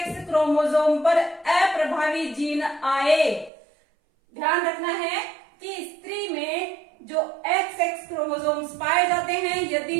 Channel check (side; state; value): left; drops out; at 3.5 s